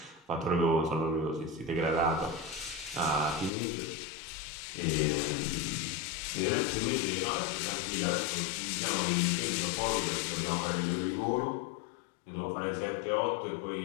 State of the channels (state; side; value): drops out; right; at 3.5 s